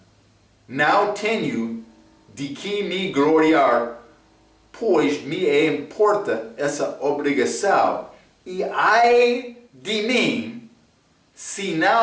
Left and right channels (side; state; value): both; identical; correlation 1.00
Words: não tenho de que me gloriar, pois me importa essa obrigação, e ai de mim se